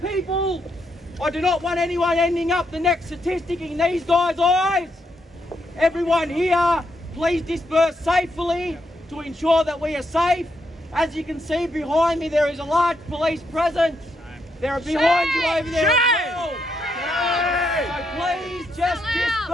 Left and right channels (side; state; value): both; normal; correlation 0.79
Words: I do not want anyone ending up the next statistic in these guys' eyes. Everyone here, please disperse safely to ensure that we are safe. As you can see behind me, there is a large police presence. They're behind you over there as well. So please just